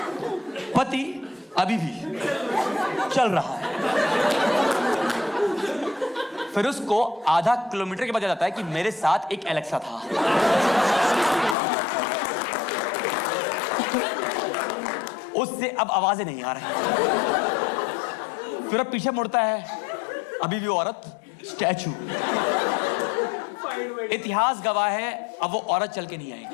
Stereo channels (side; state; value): right; drops out; at 11.6 s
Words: पति अभी भी चल रहा है। फिर उसको आधा किलोमीटर के बाद जाता है कि मेरे साथ एक एलेक्सा था। उससे अब आवाजें नहीं आ रही। फिर अब पीछे मुड़ता है, अभी भी औरत स्टैचू। इतिहास गवाह है, अब वो औरत चल के नहीं